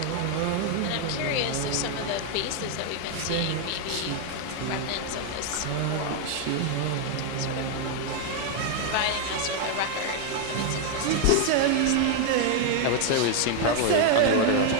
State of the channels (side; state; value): both; different; correlation 0.00